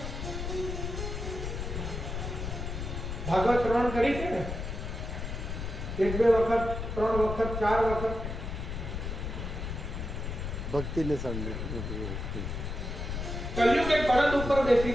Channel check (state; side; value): noise; left; rumble, 5 dB below the sound